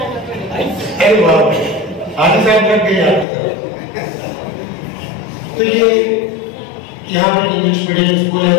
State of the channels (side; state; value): right; drops out; at 3.2 s